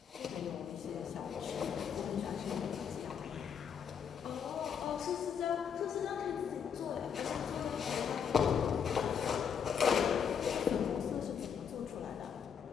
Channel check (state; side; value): quieter; right; 7.4 dB